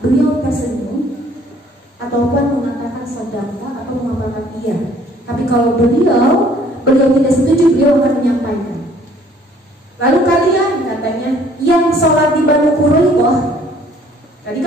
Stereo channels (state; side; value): normal; both; correlation 0.58